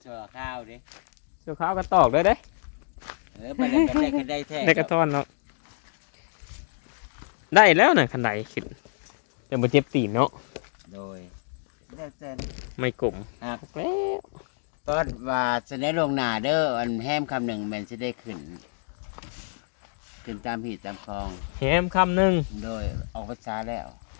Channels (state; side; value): silent; right; digital silence